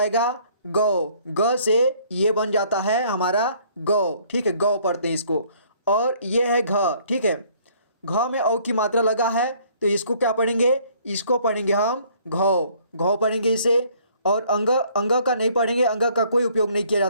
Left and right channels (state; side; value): inverted; both; correlation -0.60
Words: गौ, ग से ये बन जाता है हमारा गौ, ठीक है, गौ पढ़ते हैं इसको। और ये है घ, ठीक है, घ में औ की मात्रा लगा है, तो इसको क्या पढ़ेंगे, इसको पढ़ेंगे हम घौ, घौ पढ़ेंगे इसे। और अंग, अंग का नहीं पढ़ेंगे, अंग का कोई उपयोग नहीं किया